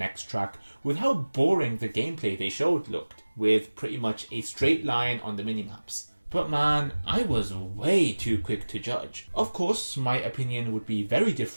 track with how boring the gameplay they showed looked, with pretty much a straight line on the minimaps. But man, I was way too quick to judge. Of course, my opinion would be very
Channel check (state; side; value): inverted; both; correlation -1.00